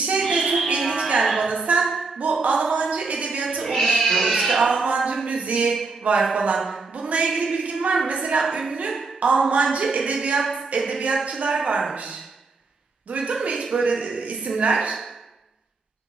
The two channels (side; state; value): left; quieter; 4.1 dB